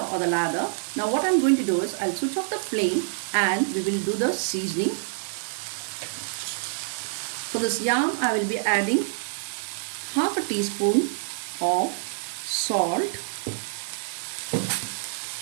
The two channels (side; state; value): left; silent; digital silence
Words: or the lather. Now what I'm going to do is I'll switch off the flame and we will do the seasoning. For this yam I will be adding half a teaspoon of salt,